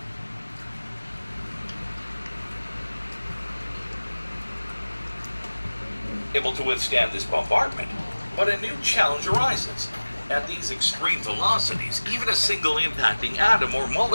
able to withstand this bombardment, but a new challenge arises. At these extreme velocities, even a single impacting atom or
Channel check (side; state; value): both; inverted; correlation -1.00